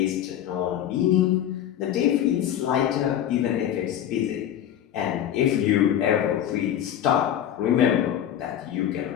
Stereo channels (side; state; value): right; quieter; 10.7 dB